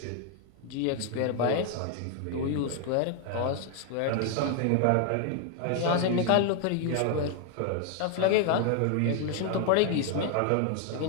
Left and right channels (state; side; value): different; both; correlation 0.00